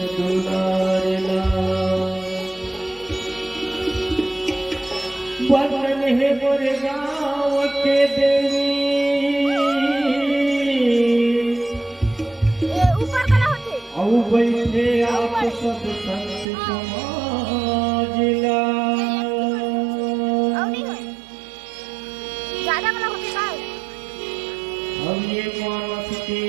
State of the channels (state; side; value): drops out; left; at 16.4 s